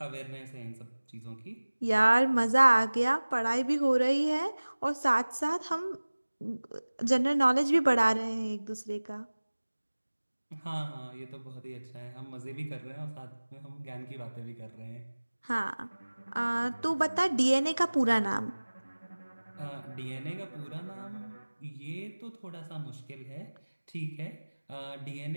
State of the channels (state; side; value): inverted; both; correlation -1.00